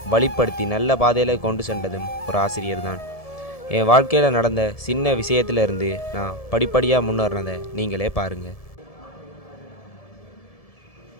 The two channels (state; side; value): late; right; 1.7 ms